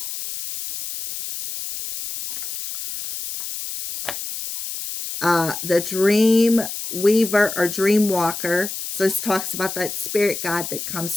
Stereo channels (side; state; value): left; noise; hiss, 7 dB below the sound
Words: The dream weaver or dream walker. So this talks about that spirit guide that